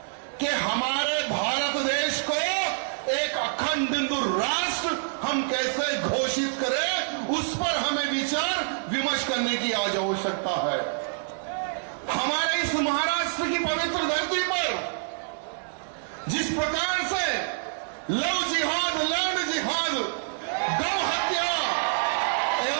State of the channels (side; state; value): left; silent; 60 dB below the other